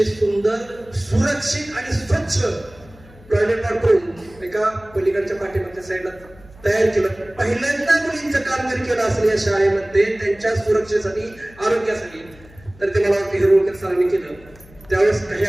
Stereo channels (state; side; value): noise; left; hum, 23 dB below the sound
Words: सुंदर, सुरक्षित आणि स्वच्छ टॉयलेट बाथरूम एका पलीकडच्या पाठीमागच्या साईडला तयार केलं. पहिल्यांदा मुलींचं काम जर केलं असेल या शाळेमध्ये त्यांच्या सुरक्षेसाठी, आरोग्यासाठी, तर ते मला वाटतं हिरोळकर सरांनी केलं. त्यावेळेस काही